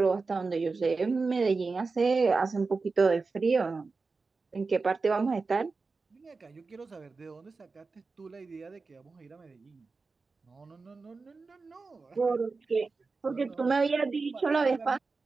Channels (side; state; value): left; quieter; 4.2 dB